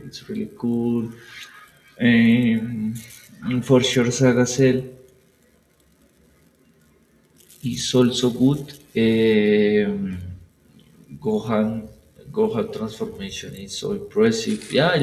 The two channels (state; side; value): identical; both; correlation 1.00